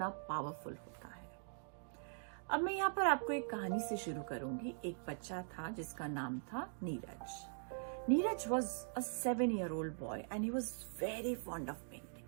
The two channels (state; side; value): silent; left; digital silence